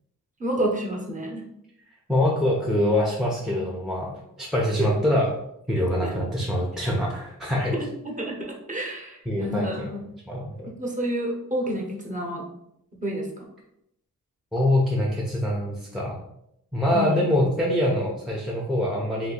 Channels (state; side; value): normal; both; correlation 0.54